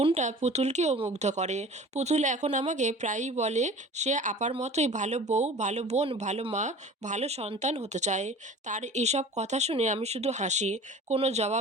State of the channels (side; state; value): both; normal; correlation 0.41